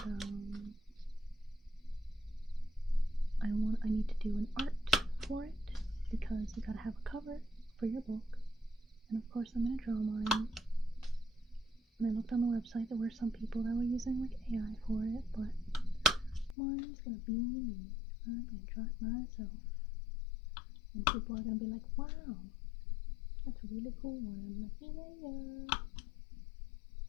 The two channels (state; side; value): drops out; right; at 16.6 s